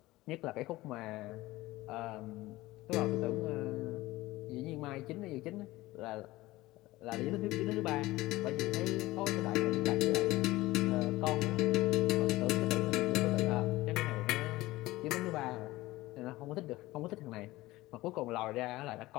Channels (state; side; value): quieter; right; 18.5 dB